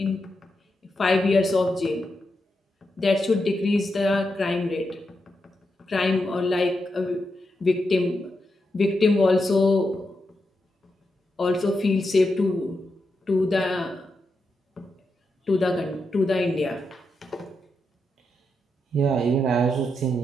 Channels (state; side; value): normal; both; correlation 0.85